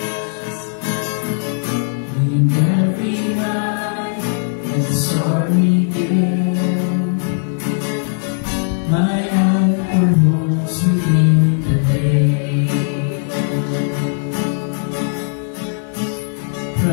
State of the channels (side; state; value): right; silent; digital silence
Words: In every high and sorry day, my anchor holds within the day.